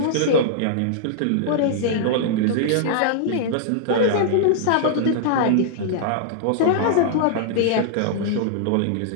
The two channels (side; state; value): both; different; correlation -0.01